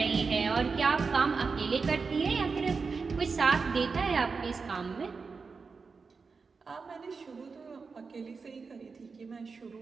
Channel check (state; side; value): quieter; left; 4.8 dB